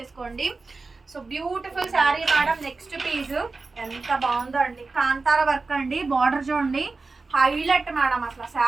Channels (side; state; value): left; quieter; 3.9 dB